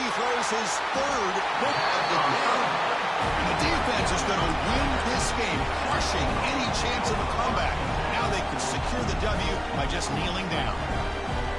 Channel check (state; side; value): identical; both; correlation 1.00